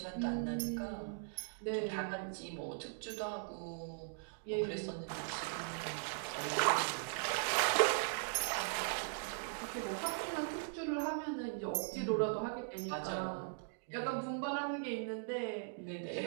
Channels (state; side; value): silent; left; digital silence